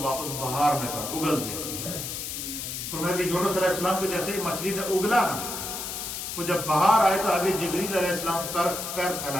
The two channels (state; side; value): noise; left; hiss, 5 dB below the sound